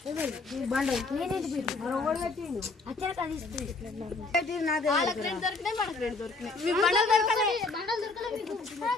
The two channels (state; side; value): quieter; right; 3.7 dB